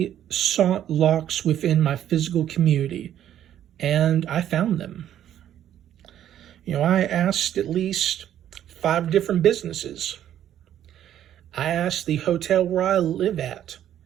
sought locks within my physical community, and I found them. You know, I asked at least 5 different businesses. I asked the hotel where I live at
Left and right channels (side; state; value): left; quieter; 11.0 dB